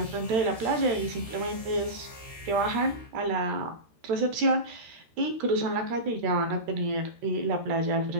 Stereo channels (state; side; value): late; left; 13 ms